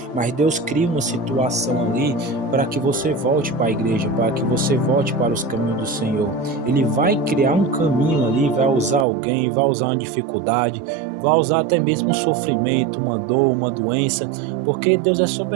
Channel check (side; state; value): left; drops out; at 9.1 s